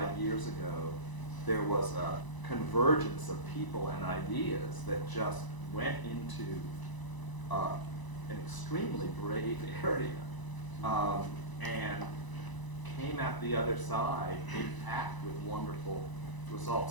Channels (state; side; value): late; right; 1.0 ms